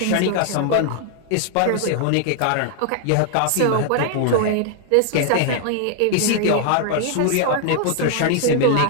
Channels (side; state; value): both; different; correlation 0.00